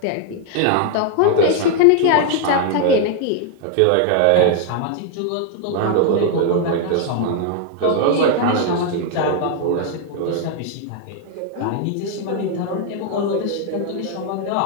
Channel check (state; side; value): different; both; correlation 0.00